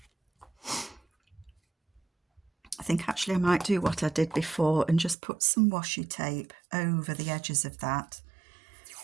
I think actually I might do what I did before and just put some washi tape over the edges of that,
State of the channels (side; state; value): left; drops out; at 5.2 s